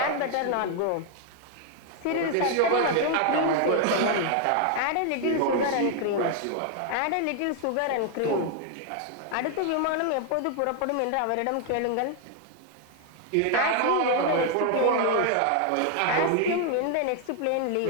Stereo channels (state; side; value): different; both; correlation 0.00